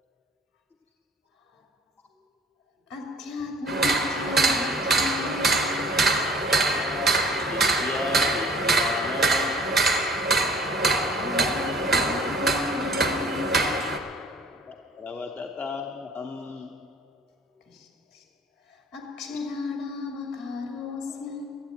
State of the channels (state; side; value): normal; both; correlation 0.52